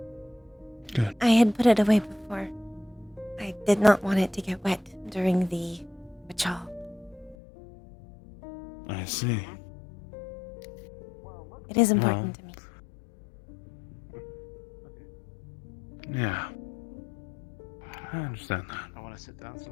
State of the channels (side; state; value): right; drops out; at 7.4 s